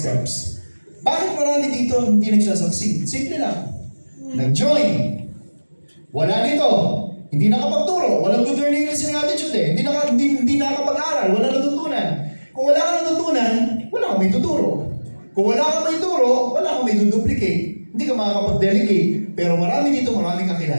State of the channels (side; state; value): both; inverted; correlation -1.00